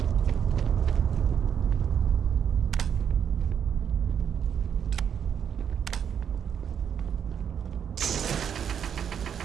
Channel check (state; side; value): quieter; left; 8.1 dB